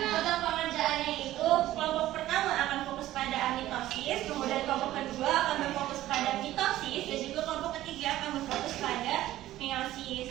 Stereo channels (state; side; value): quieter; left; 14.6 dB